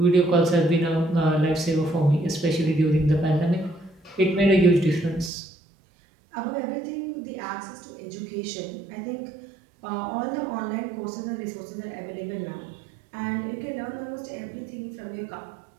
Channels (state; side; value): drops out; left; at 5.3 s